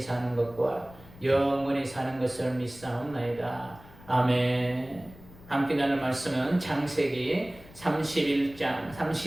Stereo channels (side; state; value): left; noise; rumble, 21 dB below the sound